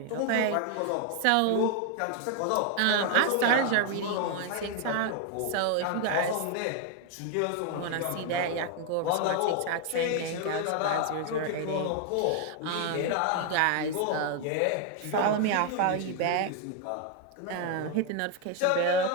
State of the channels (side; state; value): both; different; correlation 0.01